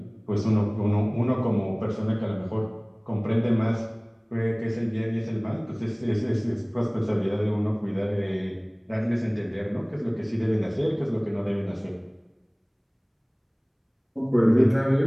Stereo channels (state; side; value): identical; both; correlation 1.00